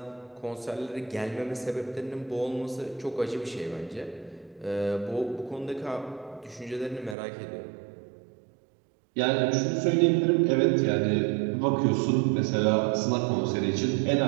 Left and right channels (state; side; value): drops out; left; at 7.2 s